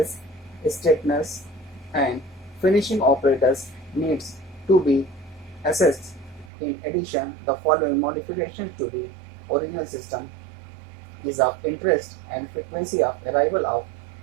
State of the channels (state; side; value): drops out; left; at 6.5 s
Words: straighteners and finishing operators needs to be assessed. In addition, the following modifications to the original system is of interest, and frequency of arrival of